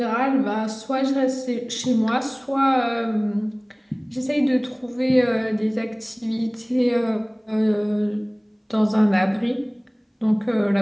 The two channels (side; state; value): both; identical; correlation 1.00